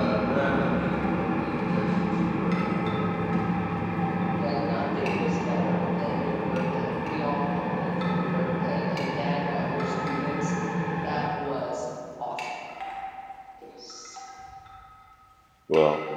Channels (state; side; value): identical; both; correlation 1.00